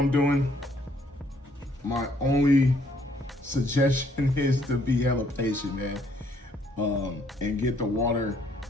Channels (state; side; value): normal; both; correlation 0.66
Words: doing, my only suggestion is to be hella patient, man, and get the water